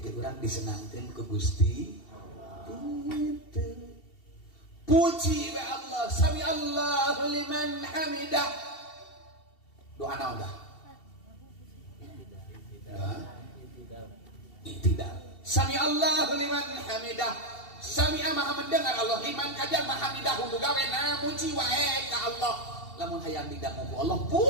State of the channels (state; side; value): late; right; 2.7 ms